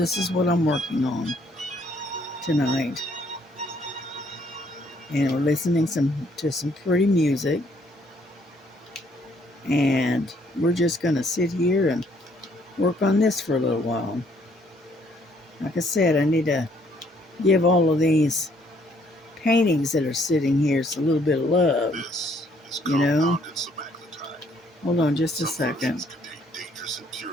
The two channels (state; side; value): normal; both; correlation 0.66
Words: is what I'm working on tonight. And we're listening to some pretty music, and we're just gonna sit here and work on this for a little while. Like I said, I need to give all of these paintings that are sitting here a little bit of love, you know. Hold on just a second.